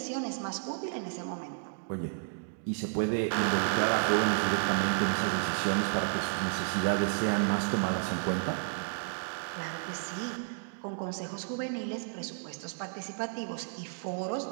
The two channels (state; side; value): silent; left; digital silence